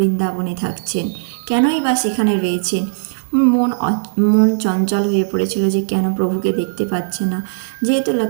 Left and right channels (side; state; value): left; silent; digital silence